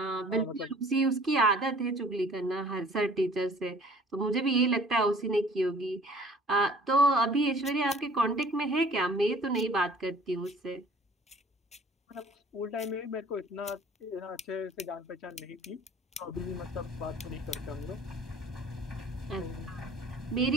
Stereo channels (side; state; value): both; normal; correlation 0.52